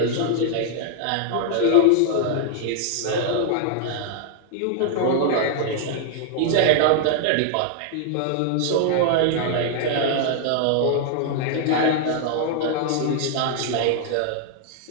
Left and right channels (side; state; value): both; different; correlation 0.00